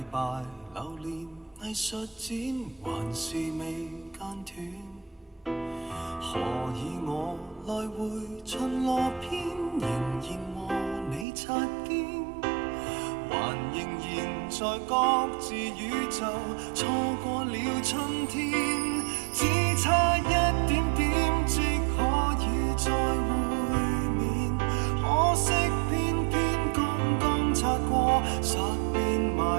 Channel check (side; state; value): left; drops out; at 11.2 s